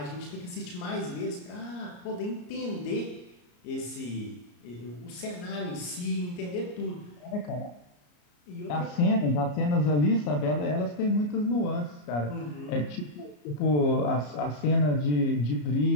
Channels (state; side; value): late; right; 34 ms